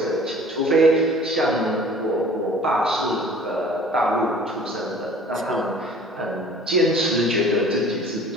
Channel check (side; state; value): both; normal; correlation 0.48